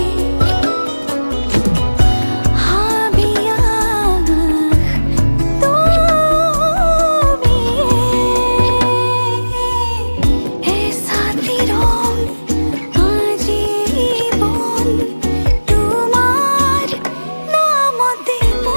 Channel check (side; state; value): both; inverted; correlation -1.00